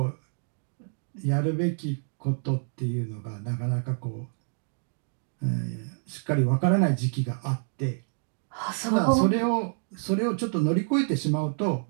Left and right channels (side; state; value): left; silent; digital silence